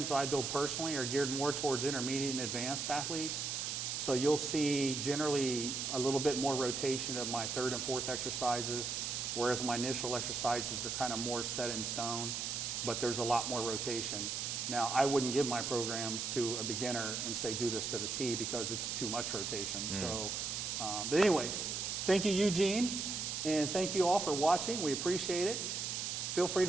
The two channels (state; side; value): noise; right; hiss, 2 dB below the sound